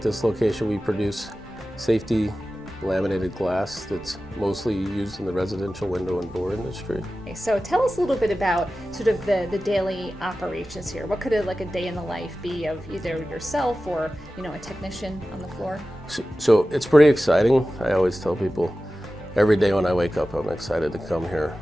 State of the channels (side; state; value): both; normal; correlation 0.95